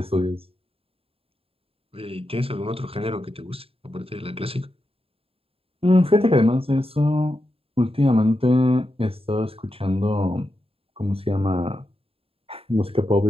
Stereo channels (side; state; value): left; late; 0.27 ms